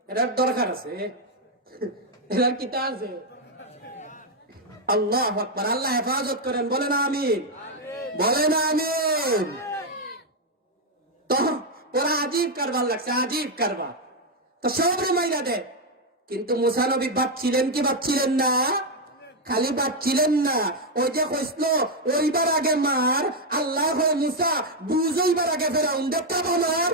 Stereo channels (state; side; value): normal; both; correlation 0.02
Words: এটার দরকার আছে, এটার কিতা আছে। আল্লাহু আকবার। আল্লাহ হেফাজত করেন, বলেন আমিন, বলেন আমিন। তো ওরা আজীব কারবার লাগছে, আজীব কারবার। তো সব মাইরা দেয়, কিন্তু মুসা নবী বাঁচছিলেন কি বাঁচছিলেন না? খালি বাঁচছিলেন না, ওই যে কইছিল ওইবার আগে মার, আল্লাহ হয় মুসা বুঝইবার আগে ফেরাউন দেখতে মার,